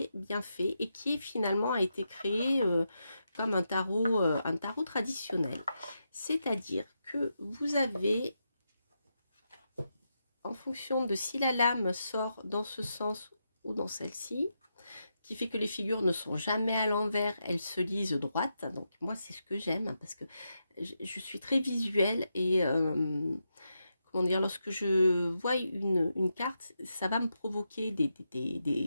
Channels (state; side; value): inverted; both; correlation -0.85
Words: bien fait et qui finalement a été créé comme un tarot traditionnel. C'est-à-dire que vous avez, en fonction de si la lame sort dans ce sens ou dans celle-ci, qui fait que les figures ne sont jamais à l'envers, elles se lisent droites. Donc moi c'est ce que j'aime parce que je suis très visuelle et comment dire, lorsque je vois une carte, ça va me provoquer